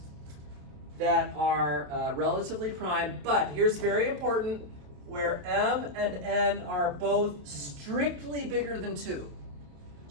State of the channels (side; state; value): left; late; 28 ms